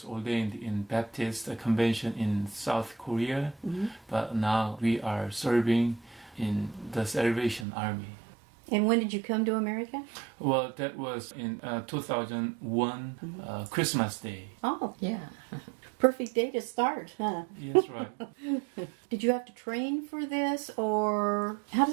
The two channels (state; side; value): drops out; left; at 7.7 s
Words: ordained in Baptist Convention in South Korea, but now we are serving in the Salvation Army. And when did you come to America? Well, that was in 2001, Christmas Day. Oh, yeah. Perfect day to start, huh? Yes, right. Did you have to train for this, or how